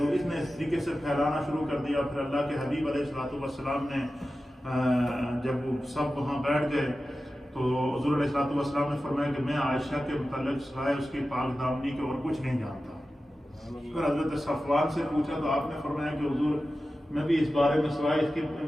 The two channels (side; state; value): both; normal; correlation 0.94